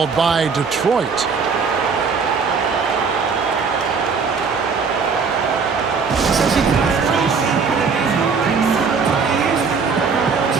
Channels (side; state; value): left; quieter; 5.3 dB